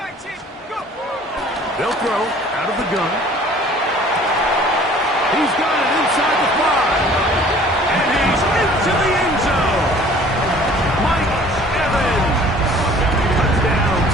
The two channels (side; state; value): both; normal; correlation 0.51